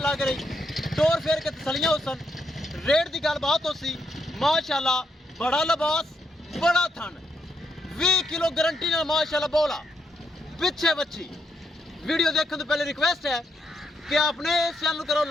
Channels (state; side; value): normal; both; correlation 0.80